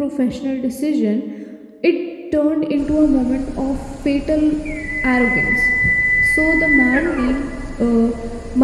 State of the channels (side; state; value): both; identical; correlation 1.00